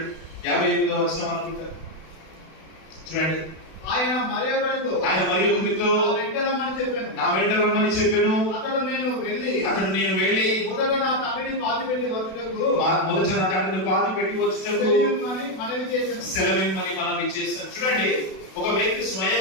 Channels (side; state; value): right; late; 32 ms